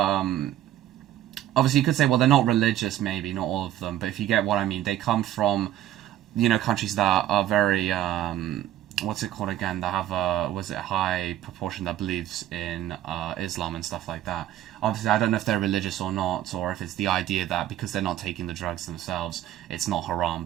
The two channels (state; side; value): quieter; left; 12.6 dB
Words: obviously, you could say, well, they're not religious, maybe, not all of them, but if you get what I mean, they come from, you know, countries that are very, what's it called again, that have a, was it a high proportion that believes in Islam and stuff like that. Obviously, I don't know if they're religious or not, or if it's the idea that because they're not taking the drugs themselves, it's not haram,